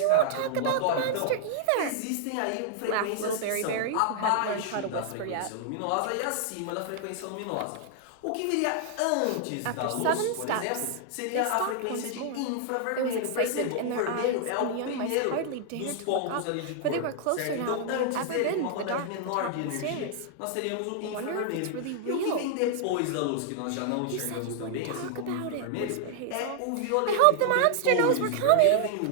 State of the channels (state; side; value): different; both; correlation -0.01